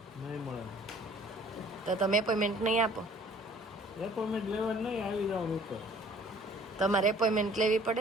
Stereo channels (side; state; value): both; normal; correlation 0.53